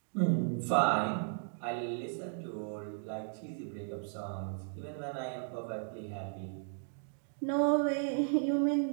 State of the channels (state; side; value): silent; left; digital silence